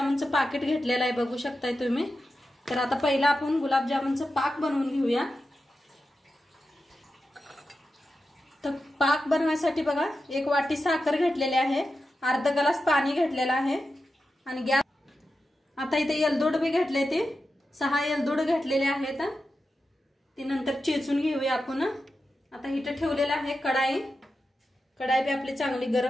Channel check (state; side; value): normal; both; correlation 0.91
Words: पाकिट घेतलेलं आहे, बघू शकताय तुम्ही। तर आता पहिला आपण गुलाबजामुनचं पाक बनवून घेऊया। तर पाक बनवण्यासाठी बघा, 1 वाटी साखर घेतलेली आहे, अर्धा ग्लास पाणी घेतलेलं आहे आणि गॅस आता इथे एलदोड बी घेतले, ते 6 एलदोड घेतलेले आहेत। ती नंतर चेचून घेऊया आपण। आता इथे ठेवलेला आहे कढाई बी आपली चांगली